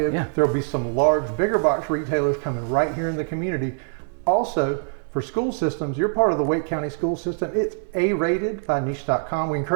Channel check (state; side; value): silent; left; digital silence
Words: Yeah. There'll be some large, bigger box retailers coming right here in the community. Also, for school systems, you're part of the Wake County school system. It's A-rated by niche.com. We